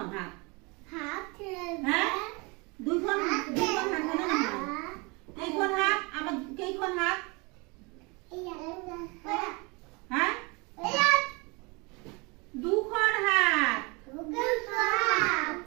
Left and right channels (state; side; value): quieter; left; 28.3 dB